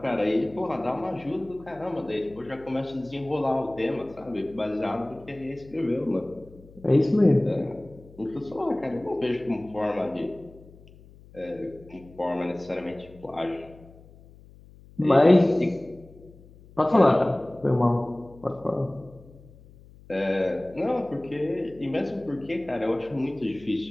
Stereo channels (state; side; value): noise; left; hum, 23 dB below the sound